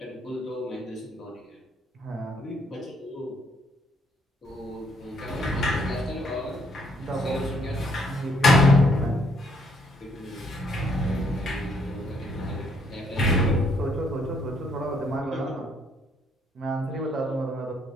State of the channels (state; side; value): normal; both; correlation 0.69